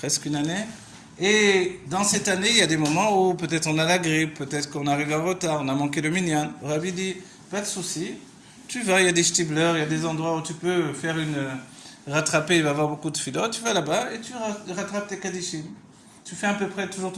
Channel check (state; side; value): identical; both; correlation 1.00